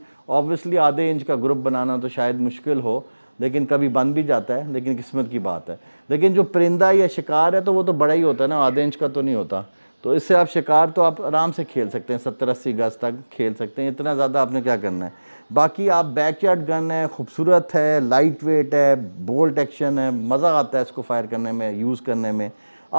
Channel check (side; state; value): both; inverted; correlation -1.00